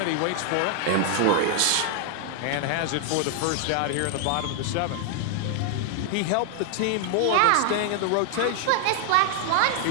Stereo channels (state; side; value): different; both; correlation 0.00